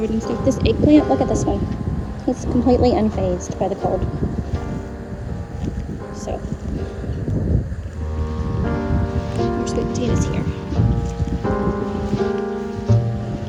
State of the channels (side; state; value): both; identical; correlation 1.00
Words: stuff. This eggplant, look at this one. It's completely unfazed by the cold. So, more sweet potatoes here.